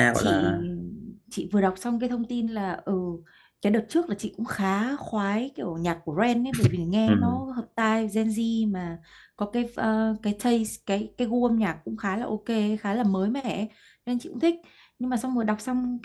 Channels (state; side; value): identical; both; correlation 1.00